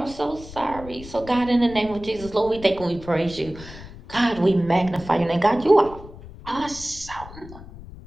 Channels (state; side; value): noise; left; rumble, 16 dB below the sound